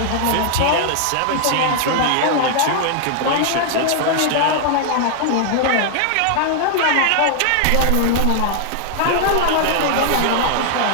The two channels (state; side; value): different; both; correlation 0.00